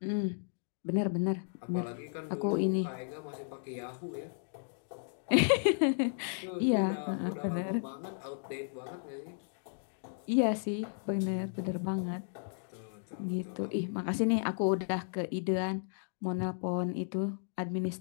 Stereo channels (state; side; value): silent; right; digital silence